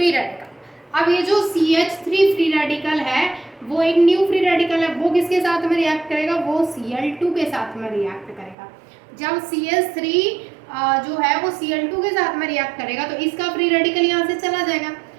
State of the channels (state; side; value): drops out; left; at 8.6 s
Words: रेडिकल। अब ये जो CH3 फ्री रेडिकल है वो एक न्यू फ्री रेडिकल है, वो किसके साथ में रिएक्ट करेगा, वो Cl2 के साथ में रिएक्ट करेगा। जब CH3 जो है वो Cl2 के साथ में रिएक्ट करेगा तो इसका फ्री रेडिकल यहाँ से चला जाएगा,